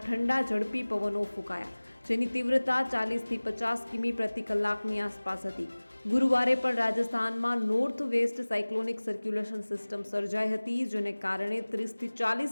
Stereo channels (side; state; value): both; inverted; correlation -1.00